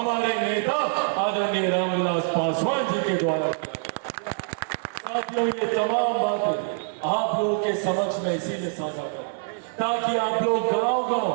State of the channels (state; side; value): silent; left; digital silence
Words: नेता आदरणीय रामविलास पासवान जी के द्वारा। साथियों, ये तमाम बातें आप लोगों के समक्ष में इसीलिए साझा करें ताकि आप लोग